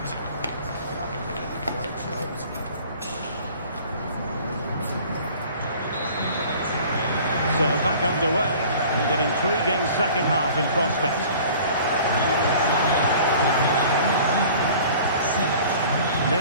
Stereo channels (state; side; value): inverted; both; correlation -0.47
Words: underway, and an intriguing second half in prospect.